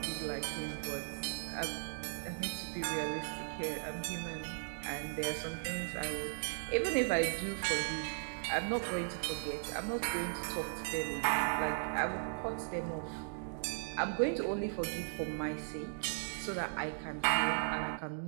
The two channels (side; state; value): left; silent; digital silence